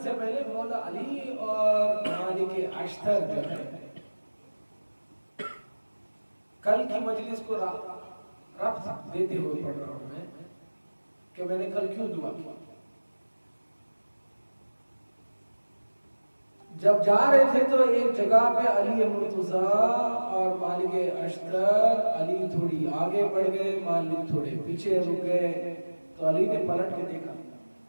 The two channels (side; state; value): both; inverted; correlation -1.00